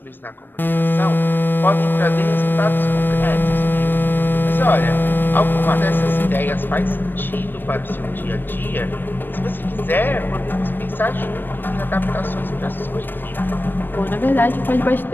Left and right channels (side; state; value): right; late; 0.094 ms